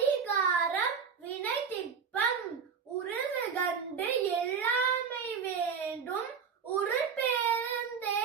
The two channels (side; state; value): left; quieter; 6.4 dB